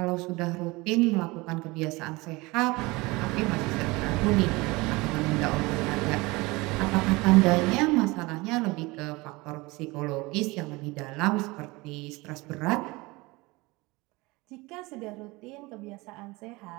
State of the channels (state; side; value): quieter; left; 23.2 dB